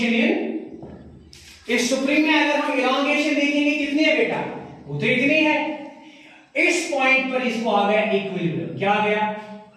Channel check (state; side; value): identical; both; correlation 1.00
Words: इन इस सुप्रीम में अगर हम इलांगेशन देखेंगे कितनी है बेटा? वो तो इतनी है। इस पॉइंट पर इसको आ गया इक्विलिब्रियम। क्या आ गया?